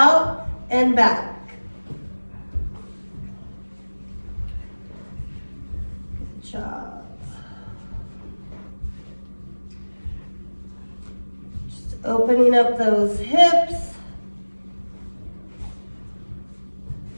and back. Job. Just opening up those hips.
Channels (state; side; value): inverted; both; correlation -1.00